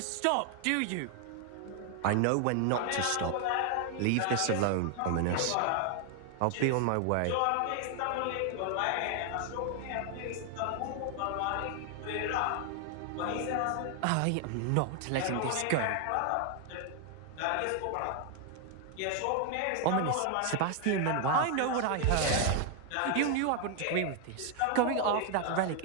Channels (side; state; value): both; different; correlation 0.00